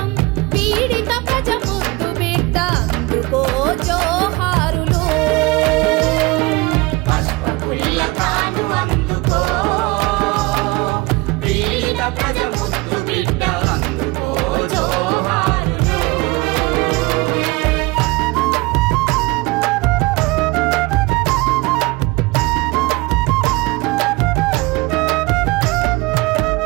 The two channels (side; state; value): left; quieter; 23.2 dB